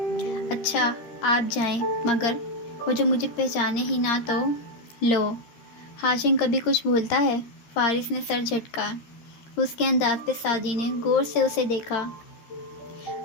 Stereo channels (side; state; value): right; late; 13 ms